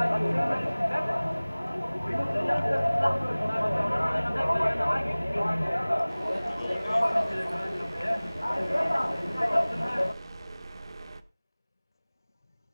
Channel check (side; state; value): both; inverted; correlation -1.00